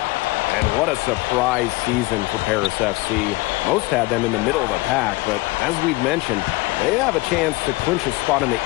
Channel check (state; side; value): quieter; right; 22.2 dB